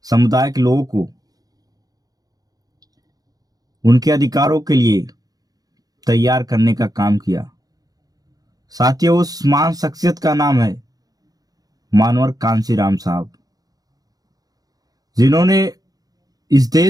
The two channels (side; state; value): left; late; 0.18 ms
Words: समुदाय के लोगों को उनके अधिकारों के लिए तैयार करने का काम किया। साथियों, उस महान शख्सियत का नाम है मानवर कांशीराम साहब, जिन्होंने इस